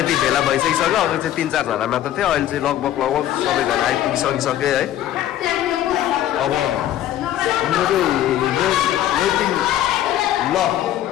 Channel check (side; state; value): right; quieter; 12.3 dB